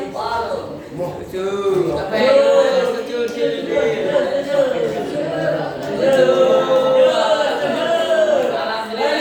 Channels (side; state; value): both; identical; correlation 1.00